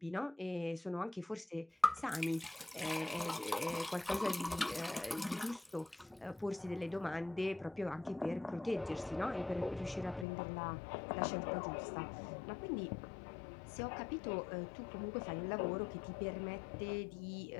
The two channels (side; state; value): right; drops out; at 10.2 s